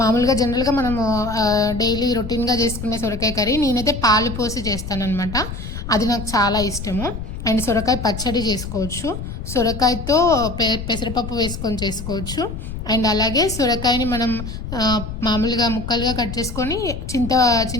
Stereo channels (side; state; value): left; noise; rumble, 8 dB below the sound